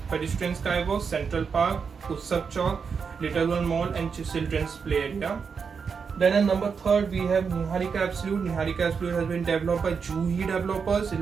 pedestrian skywalk, Central Park, Utsav Chowk, Little One Mall and children's play area. Then at number 3 we have Niharika Absolute. Niharika Absolute has been developed by Juhi Developers. It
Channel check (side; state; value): left; quieter; 5.9 dB